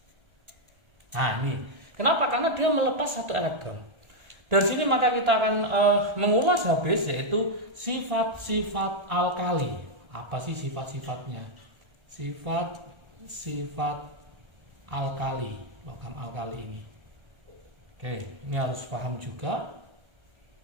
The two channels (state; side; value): late; left; 1.3 ms